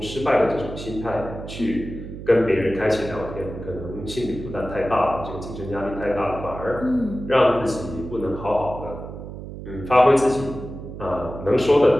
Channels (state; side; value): noise; right; hum, 11 dB below the sound